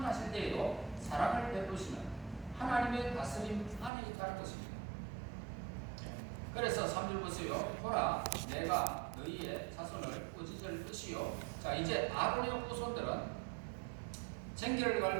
때에도 사랑을 베푸시는 하나님의 다스림 안에 있다는 것입니다. 그래서 3절 보세요. 보라, 내가 너희의 자손을 꾸짖을 것이요. 자, 이제 아론의 후손들은 쟁기를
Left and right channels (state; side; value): drops out; left; at 3.9 s